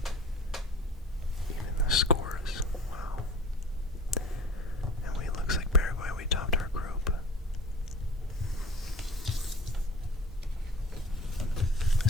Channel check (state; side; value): normal; both; correlation 0.41